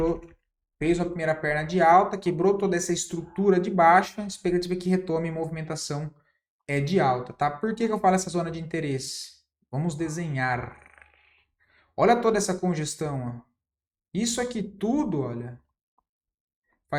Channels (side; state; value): both; identical; correlation 1.00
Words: fez a primeira perna de alta, quebrou toda essa estrutura de baixa, expectativa que retome movimentação de alta, tá? Por que eu falo essa zona de interesse? Vamos desenhar. Olha toda essa congestão, ó. Isso aqui tudo, olha,